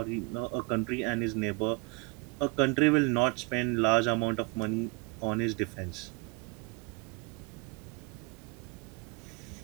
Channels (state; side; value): quieter; left; 28.8 dB